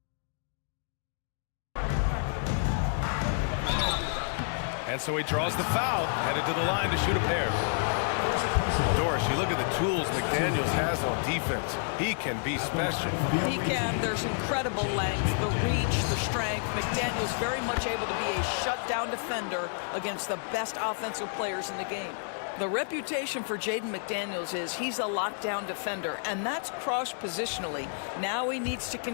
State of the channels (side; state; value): right; silent; digital silence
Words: And so he draws the foul, headed to the line to shoot a pair. Doris, you look at the tools McDaniels has on defense. He can be special. He can. There's incredible length, the reach, the strength. McDaniels very much able to be a shutdown defender against the best offensive players in the game. The reputation for Jaden McDaniels is he's a lockdown defender, and that's cross-positionally. Now he needs to